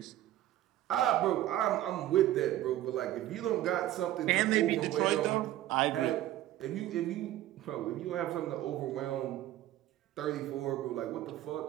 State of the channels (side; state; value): left; quieter; 13.9 dB